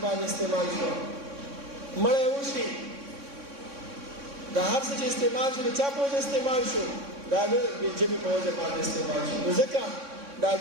باندې استعمال شو. مړی وشي دا هر څه چې استعمال شو د چا په وجه استعمال شو؟ دا د ژبې په وجه باندې استعمال شو. نو ځکه دا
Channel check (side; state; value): left; late; 3.6 ms